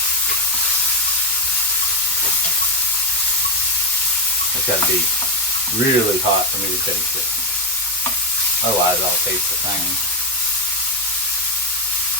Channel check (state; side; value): normal; both; correlation 0.08